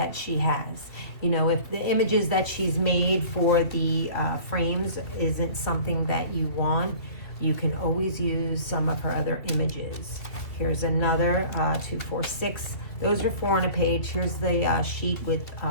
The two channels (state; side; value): late; right; 2.5 ms